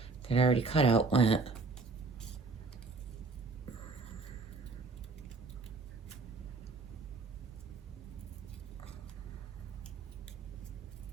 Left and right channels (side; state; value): left; quieter; 4.2 dB